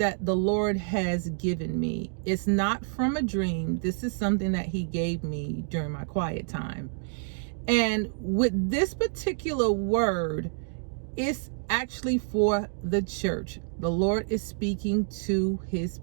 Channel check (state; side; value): silent; left; digital silence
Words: the Lord has given me. It's not from a dream. This is something that He gave me during my quiet time. And with this particular word, it's actually for the church. The Lord is speaking to His